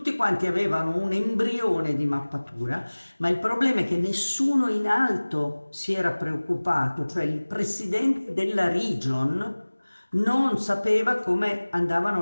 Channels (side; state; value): both; inverted; correlation -1.00